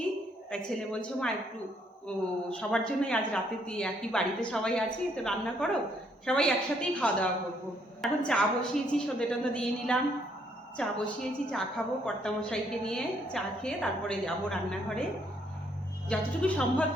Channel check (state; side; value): normal; both; correlation 0.70